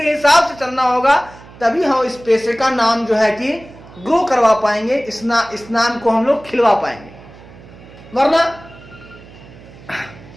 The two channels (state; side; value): noise; right; hum, 20 dB below the sound